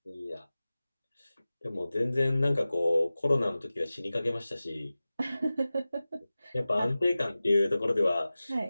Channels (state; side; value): inverted; both; correlation -0.96